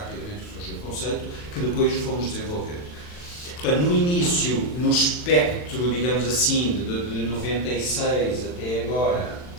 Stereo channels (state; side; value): late; right; 40 ms